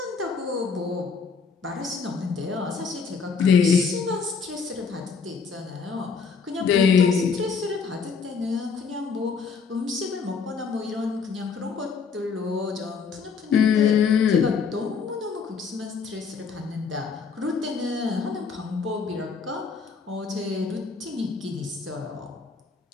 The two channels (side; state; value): right; quieter; 5.6 dB